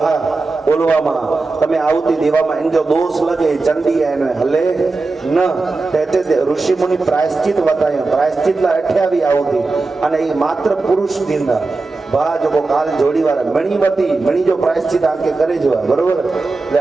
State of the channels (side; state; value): left; quieter; 3.7 dB